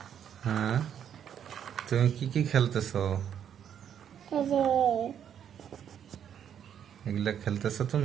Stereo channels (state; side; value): quieter; left; 9.0 dB